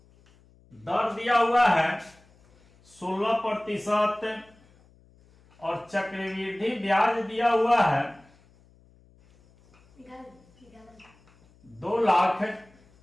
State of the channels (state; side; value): noise; left; hum, 30 dB below the sound